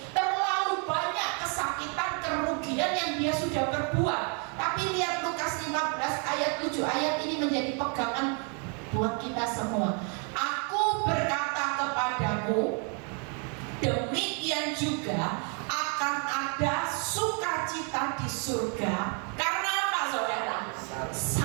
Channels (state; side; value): quieter; left; 38.3 dB